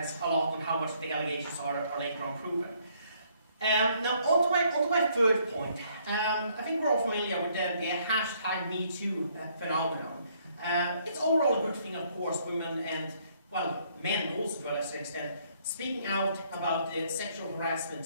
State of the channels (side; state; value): both; inverted; correlation -0.67